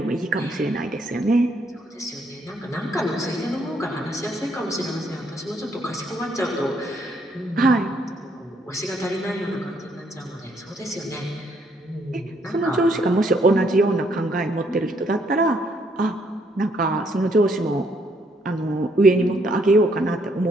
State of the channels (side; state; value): both; normal; correlation 0.70